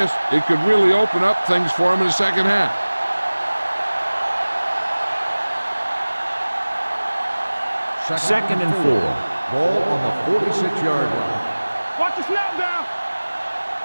it could really open up things for them in the second half. Second and 4. Ball on the 46-yard line. Watch the snap down.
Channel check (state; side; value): inverted; both; correlation -1.00